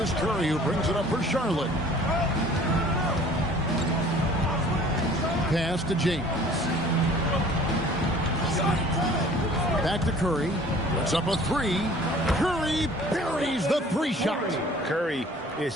Curry who brings it up for Charlotte. Pass to James. Back to Curry. Puts up a 3. Curry buries the 3-shot. Curry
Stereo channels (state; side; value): normal; both; correlation 0.50